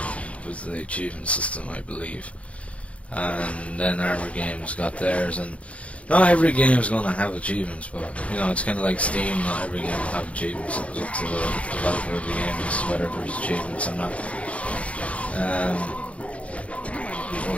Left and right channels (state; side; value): late; right; 0.063 ms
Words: with the achievement system, I believe, and then Armour Games got theirs. And not every game is going to have achievements, but it's kind of like Steam. Not every game will have achievements. It was up to the developer of the game as to whether there's achievements or not. Oh,